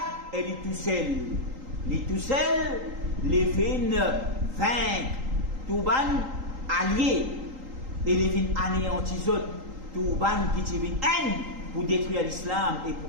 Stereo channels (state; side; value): late; left; 3.8 ms